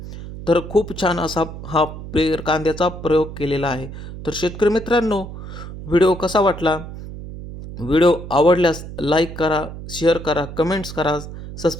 तर खूप छान असा हा पेर कांद्याचा प्रयोग केलेला आहे. तर शेतकरी मित्रांनो, व्हिडिओ कसा वाटला? व्हिडिओ आवडल्यास लाईक करा, शेअर करा, कमेंट्स करा,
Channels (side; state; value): right; noise; hum, 11 dB below the sound